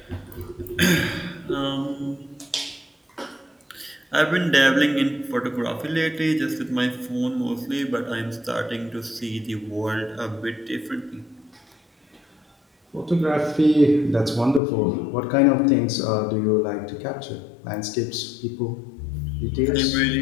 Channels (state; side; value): drops out; right; at 14.6 s